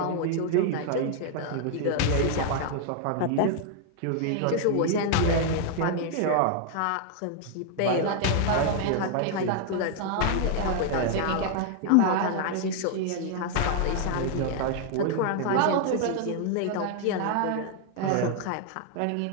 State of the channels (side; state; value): both; different; correlation 0.00